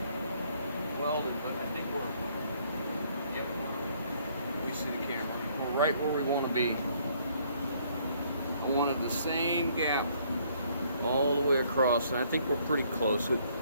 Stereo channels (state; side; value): inverted; both; correlation -0.65